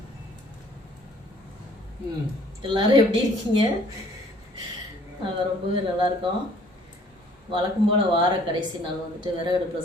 எல்லாரும் எப்படி இருக்கீங்க? நாங்கள் ரொம்பவே நல்லா இருக்கோம். வழக்கம் போல் வார கடைசி நாள் வந்துட்டு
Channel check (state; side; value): normal; both; correlation 0.58